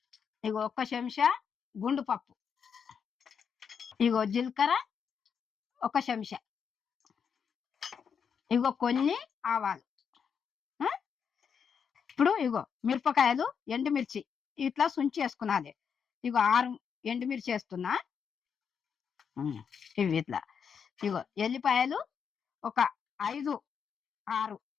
ఇగో ఒక్క చెంచా గుండు పప్పు. ఇగో జీలకర్ర ఒక చెంచా. ఇగో కొన్ని ఆవాలు. ఇప్పుడు ఇగో మిరపకాయలు ఎండుమిర్చి ఇట్లా సుంచి వేసుకున్నది. ఇగో 6 ఎండుమిర్చి వేస్తున్నా. ఇవి ఇట్లా. ఇగో ఎల్లిపాయలు ఒక 5, 6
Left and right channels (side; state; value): right; quieter; 6.9 dB